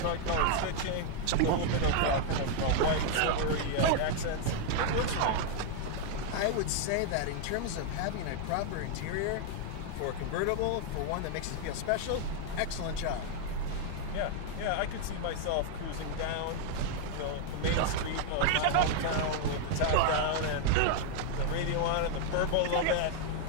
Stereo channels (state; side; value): different; both; correlation 0.00